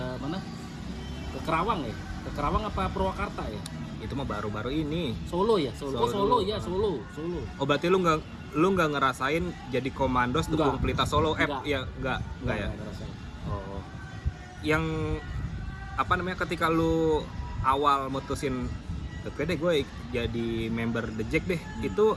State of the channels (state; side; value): identical; both; correlation 1.00